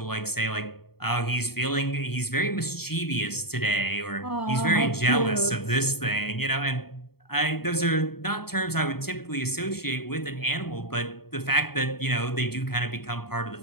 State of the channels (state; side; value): late; right; 0.95 ms